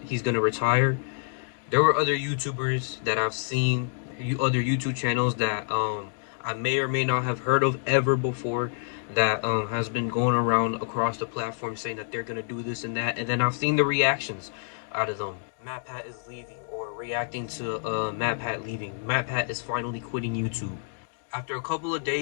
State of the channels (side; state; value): right; silent; digital silence